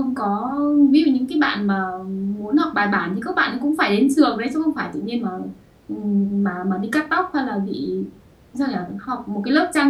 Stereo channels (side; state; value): both; identical; correlation 1.00